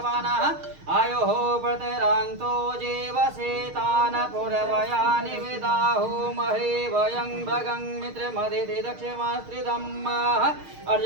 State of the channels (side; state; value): left; late; 6.5 ms